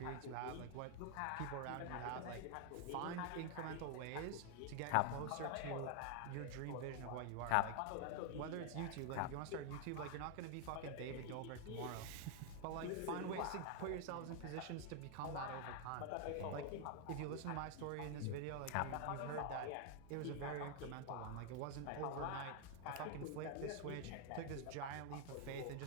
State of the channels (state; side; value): different; both; correlation 0.00